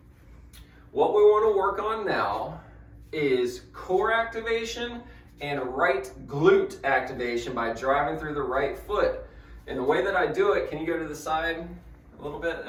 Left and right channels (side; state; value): both; identical; correlation 1.00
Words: what we want to work on now is core activation and right glute activation by driving through the right foot. And the way that I do it, can you go to the side a little bit?